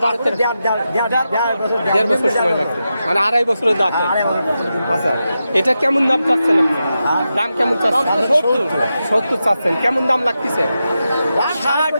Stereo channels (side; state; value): both; inverted; correlation -0.89